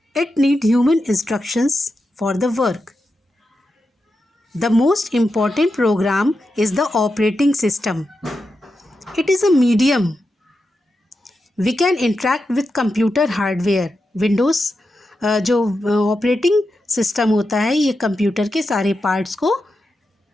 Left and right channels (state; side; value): normal; both; correlation 0.88